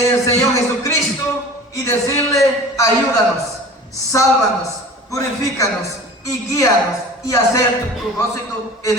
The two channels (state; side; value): normal; both; correlation 0.40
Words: el Señor Jesucristo y decirle: ayúdanos, sálvanos, purifícanos y guíanos y hacer tu propósito en